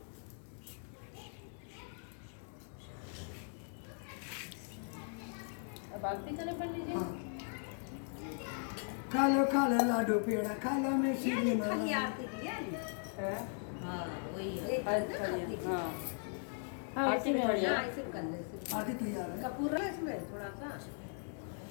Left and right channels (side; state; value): right; silent; 52 dB below the other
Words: अब आरती करें पंडित जी। हाँ खा लो लाडू पेड़ा खा लो में सीढ़ी माला। आरती की है है? हाँ वही है अच्छा ये, हाँ। हाँ आरती में खड़ी है। हाँ, इसे कर ले इसे। आरती तैयार है। कपूर है इसमें थोड़ा सा